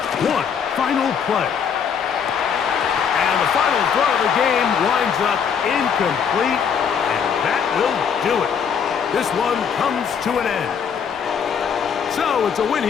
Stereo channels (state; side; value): quieter; right; 7.1 dB